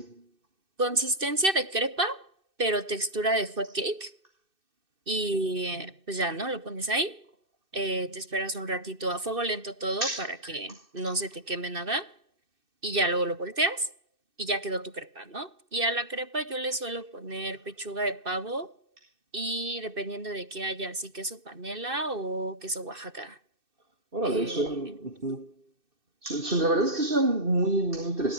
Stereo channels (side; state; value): left; late; 2.6 ms